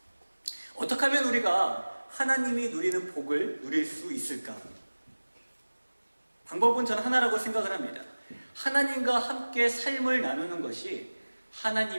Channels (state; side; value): inverted; both; correlation -1.00